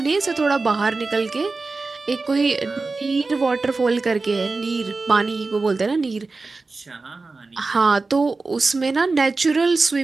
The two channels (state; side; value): quieter; left; 3.8 dB